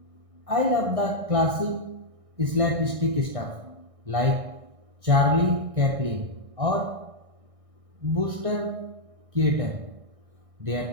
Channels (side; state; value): left; late; 1.6 ms